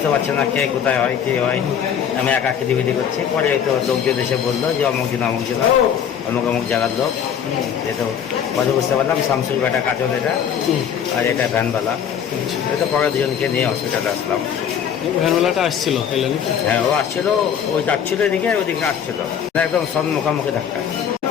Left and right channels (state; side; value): quieter; right; 8.3 dB